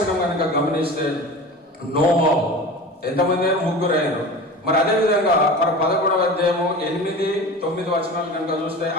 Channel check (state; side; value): normal; both; correlation 0.33